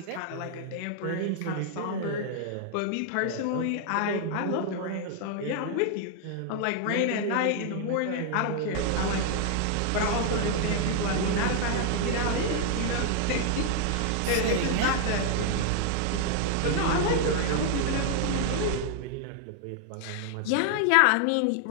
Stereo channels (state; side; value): different; both; correlation 0.00